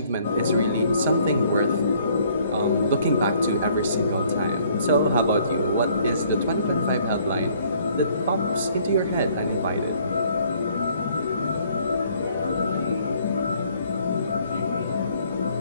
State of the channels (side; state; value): both; inverted; correlation -0.61